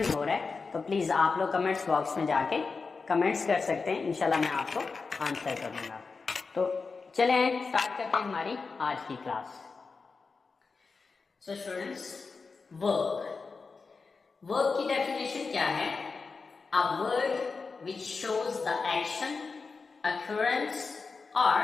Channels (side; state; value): right; quieter; 4.5 dB